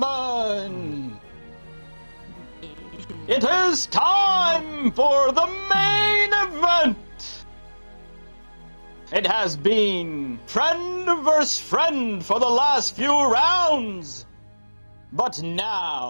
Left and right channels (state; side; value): inverted; both; correlation -1.00